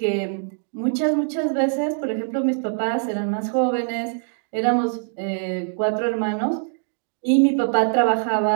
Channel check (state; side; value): silent; left; 63 dB below the other